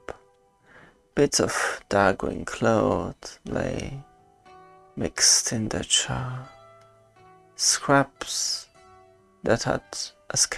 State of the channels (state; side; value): identical; both; correlation 1.00